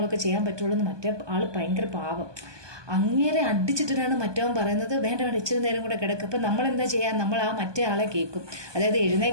ചെയ്യാൻ പറ്റുള്ളൂ എന്ന്. മറ്റേ ആൾ ഭയങ്കര പാപം. അങ്ങേരെ അടിച്ചിട്ടിട്ടാണ് മറ്റവൻ പറയുന്നത് വേണ്ട വേണ്ട ഇച്ചിരി നേരം കൂടെ കിടക്കുക. അപ്പം നമ്മൾ എന്താ ചെയ്യുക, നമ്മൾ ആ മറ്റേ ആളെ കേൾക്കും. അതായത്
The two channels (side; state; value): left; late; 1.2 ms